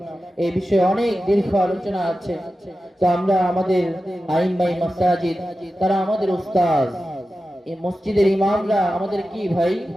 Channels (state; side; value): normal; both; correlation 0.93